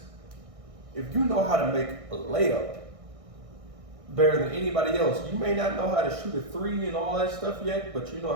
If you know how to make a layup better than anybody else, you may not know how to shoot a three and all that stuff yet, but you know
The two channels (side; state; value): left; late; 1.6 ms